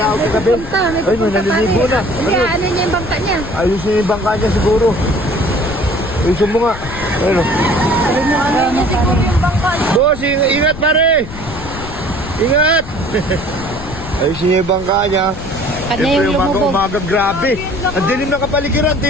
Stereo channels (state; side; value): noise; left; rumble, 12 dB below the sound